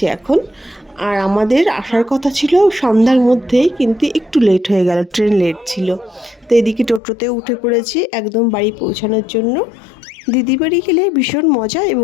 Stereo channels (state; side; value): drops out; right; at 7.0 s